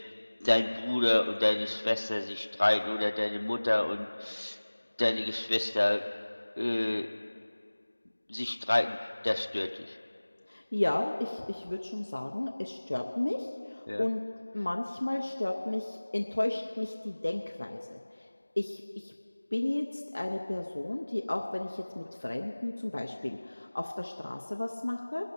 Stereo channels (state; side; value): inverted; both; correlation -1.00